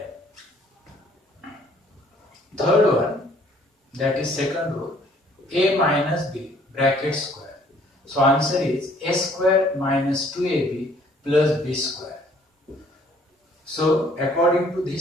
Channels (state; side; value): normal; both; correlation 0.60